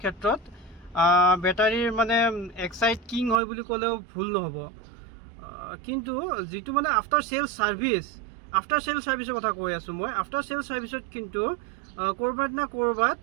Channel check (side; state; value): left; drops out; at 3.4 s